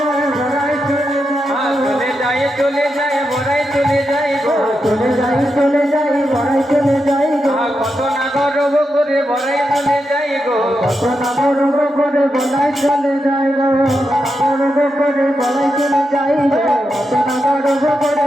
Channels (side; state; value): both; normal; correlation 0.86